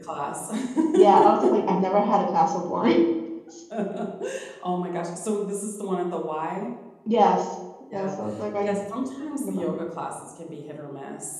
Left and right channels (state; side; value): identical; both; correlation 1.00